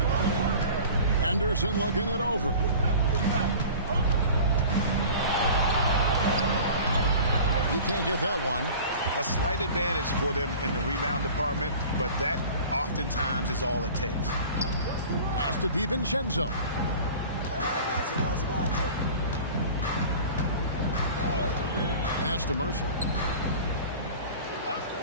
Anderson looking it over. He can't get that one. A slight advantage for them in the rebound department, but that oftentimes is all it takes. Pass to DiVincenzo. Pass to Mercer.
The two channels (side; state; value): both; inverted; correlation -0.41